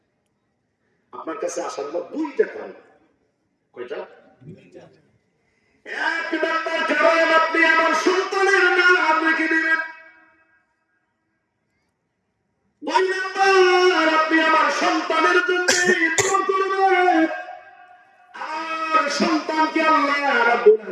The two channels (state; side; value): identical; both; correlation 1.00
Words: আপনার কাছে আসার আমার দুইটা কারণ। কয়টা? এক নম্বর কারণ, আপনি আমার সন্তানের নাম রেখে দিবেন। দুই নম্বর, আপনি আমার সন্তানের জন্য দোয়া করবেন, আর সন্তানকে আল্লাহ রাব্বুল